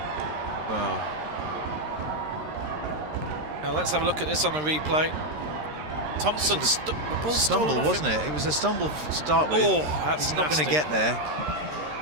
Wow. Now let's have a look at this on the replay. Thompson, the ball stumble, wasn't it? It was a stumble to start with. Oh, that's He's not going to get there.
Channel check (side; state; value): left; late; 13 ms